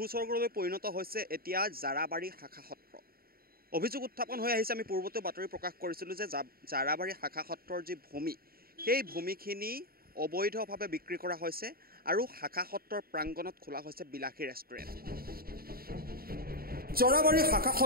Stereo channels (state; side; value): late; left; 0.43 ms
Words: পৰিণত হৈছে এতিয়া জাৰাবাৰী শাখা সত্ৰ। অভিযোগ উত্থাপন হৈ আহিছে। আমি পূৰ্বতে বাতৰি প্ৰকাশ কৰিছিলোঁ যে জাৰাবাৰী শাখা সত্ৰৰ যি ভূমি, সেই ভূমিখিনি অবৈধভাৱে বিক্ৰী কৰা হৈছে আৰু শাখা সত্ৰৰ প্ৰাংগণত খোলা হৈছে বিলাসী ৰেষ্টুৰেণ্ট। জাৰাবাৰী শাখা